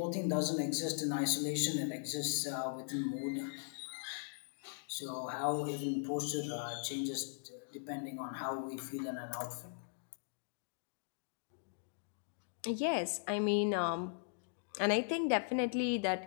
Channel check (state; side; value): silent; right; digital silence